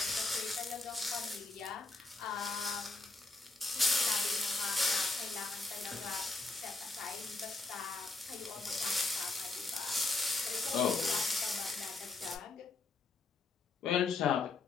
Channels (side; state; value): right; quieter; 3.5 dB